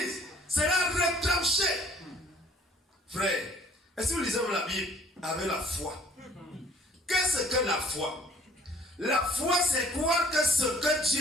sera retranché. Frère, est-ce que nous lisons la Bible avec la foi? Qu'est-ce que la foi? La foi, c'est croire que ce que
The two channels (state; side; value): normal; both; correlation 0.56